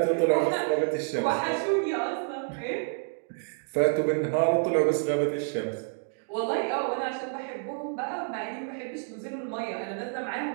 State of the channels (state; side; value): silent; left; digital silence